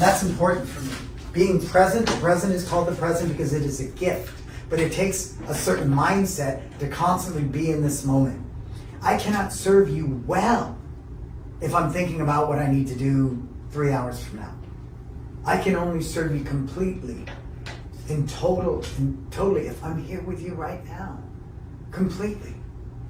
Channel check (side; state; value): both; identical; correlation 1.00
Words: that's important for me. Being present, the present is called the present because it is a gift. But it takes a certain mindset to constantly be in this moment. I cannot serve you well if I'm thinking about what I need to do 3 hours from now. I can only serve you completely, totally if I'm here with you right now. Completely.